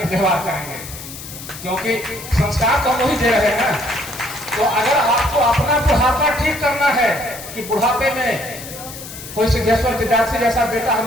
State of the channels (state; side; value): noise; left; hiss, 13 dB below the sound